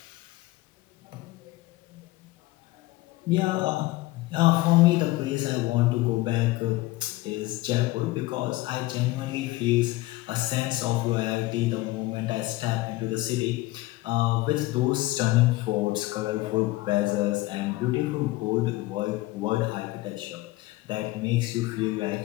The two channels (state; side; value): quieter; right; 18.9 dB